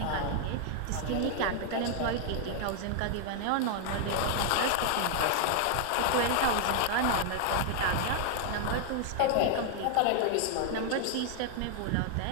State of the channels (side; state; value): both; different; correlation 0.00